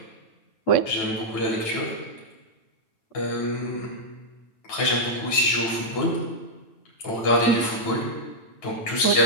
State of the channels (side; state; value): right; late; 9.1 ms